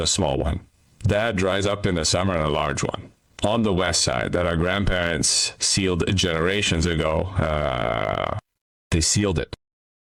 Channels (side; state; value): both; identical; correlation 1.00